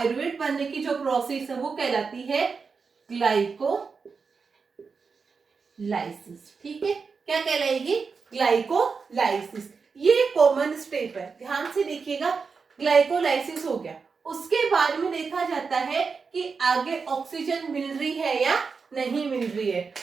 बनने की जो प्रोसेस है वो कहलाती है ग्लाइकोलाइसिस। ठीक है, क्या कहलाएगी, ग्लाइकोलाइसिस। ये कॉमन स्टेप है, ध्यान से देखिएगा। ग्लाइकोलाइसिस हो गया, उसके बाद में देखा जाता है कि आगे ऑक्सीजन मिल रही है या नहीं मिल रही है,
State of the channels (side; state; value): left; quieter; 5.1 dB